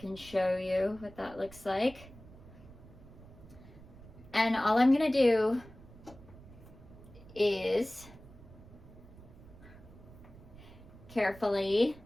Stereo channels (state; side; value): noise; right; rumble, 19 dB below the sound